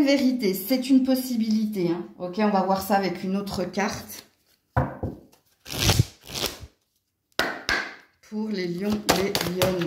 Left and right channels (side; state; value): both; identical; correlation 1.00